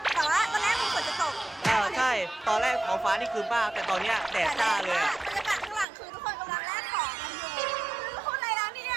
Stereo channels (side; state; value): left; drops out; at 5.9 s